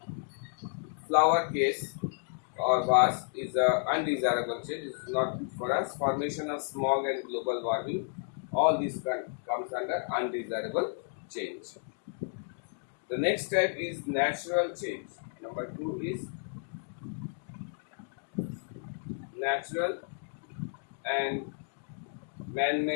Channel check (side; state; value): right; silent; digital silence